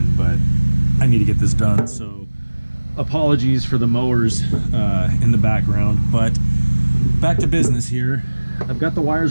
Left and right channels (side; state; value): both; inverted; correlation -1.00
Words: but I need to get this done. So apologies for the mowers in the background, but back to business here. I've got the